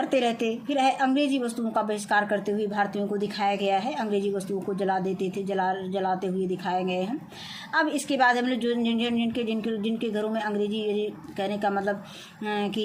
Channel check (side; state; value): both; identical; correlation 1.00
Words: रहते। फिर है अंग्रेजी वस्तुओं का बहिष्कार करते हुए भारतीयों को दिखाया गया है, अंग्रेजी वस्तुओं को जलाते हुए दिखाए गए हैं। अब इसके बाद हम लोग जो जिनके घरों में अंग्रेजी, कहने का मतलब कि